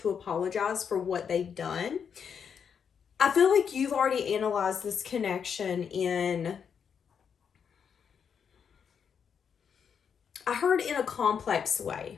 apologize for what they've done. I feel like you've already analyzed this connection in, I heard in a complex way.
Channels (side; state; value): right; quieter; 7.1 dB